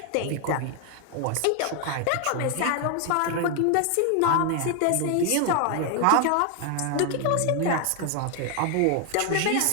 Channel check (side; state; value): both; different; correlation 0.00